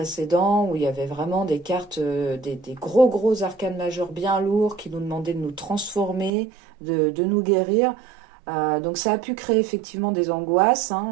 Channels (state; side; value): drops out; left; at 6.3 s